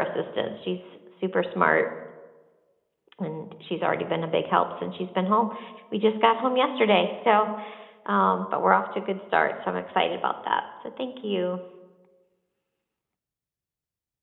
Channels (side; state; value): both; identical; correlation 1.00